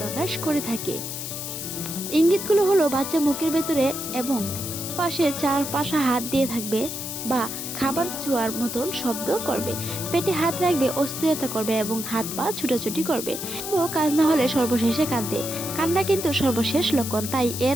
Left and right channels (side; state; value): left; noise; hiss, 6 dB below the sound